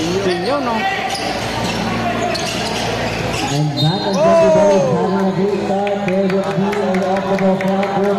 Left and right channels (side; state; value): both; identical; correlation 1.00